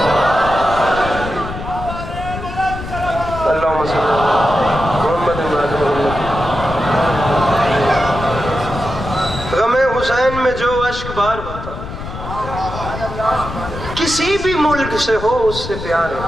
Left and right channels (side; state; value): left; noise; rumble, 9 dB below the sound